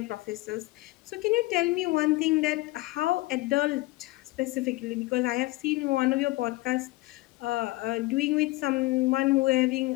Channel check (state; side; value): quieter; right; 20.5 dB